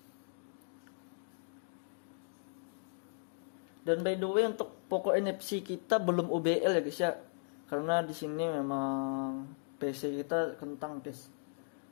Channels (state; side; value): silent; right; digital silence